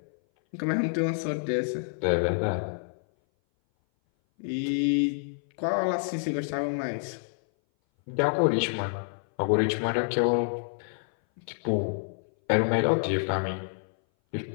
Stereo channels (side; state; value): right; silent; 58 dB below the other